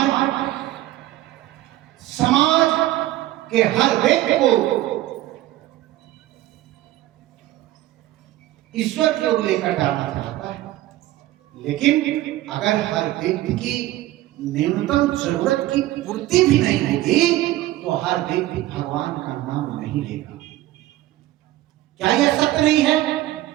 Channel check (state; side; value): quieter; left; 15.6 dB